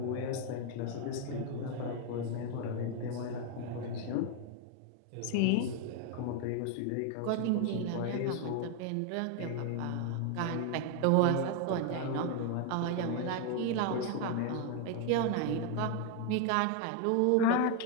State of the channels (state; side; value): different; both; correlation 0.01